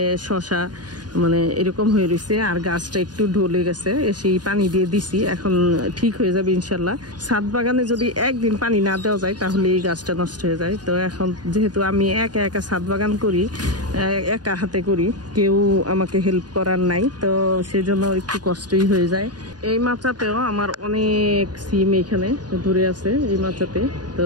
শশা মানে এরকম হয়ে রয়েছে, আর গাছটা একটু ঢলে গেছে, এসে পানি দিয়ে দিছি, এখন ঠিক হয়ে যাবে ইনশাল্লাহ। ছাদ বাগানে যদি একদিন পানি না দেওয়া যায় তাহলে এই গাছটা নষ্ট হয়ে যায়। তো এখন যেহেতু আমি একা একা ছাদ বাগান করি, একা হাতে করি, কেউ আমাকে হেল্প করার নাই, তো সেজন্য একটু কষ্টই হয়ে যায়। এই মাচাতেও আমার অনেক সিম এখানে ধরে আছে এই মাচাতে। তো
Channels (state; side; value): late; left; 0.69 ms